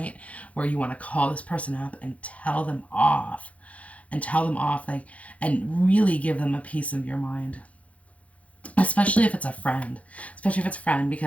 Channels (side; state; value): right; late; 0.065 ms